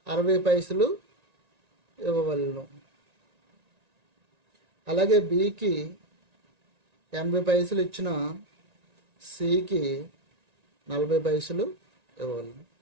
60 పైసలు ఇవ్వవలను. అలాగే బికి 80 పైసలు ఇచ్చిన సికి 40 పైసలు ఇవ్వవలను.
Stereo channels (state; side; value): late; left; 1.9 ms